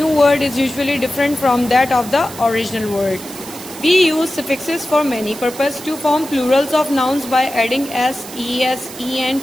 different from that of the original word. We use suffixes for many purposes: to form plurals of nouns by adding s, es, en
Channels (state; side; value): noise; right; hiss, 15 dB below the sound